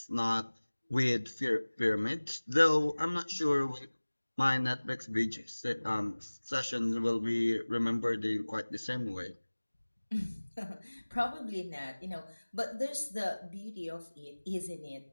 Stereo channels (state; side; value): inverted; both; correlation -1.00